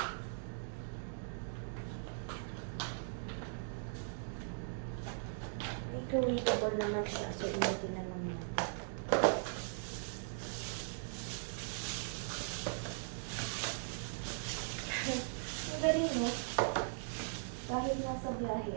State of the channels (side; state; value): left; silent; digital silence